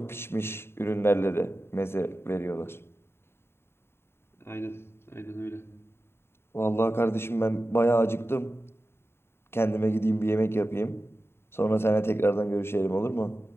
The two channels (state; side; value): late; right; 0.12 ms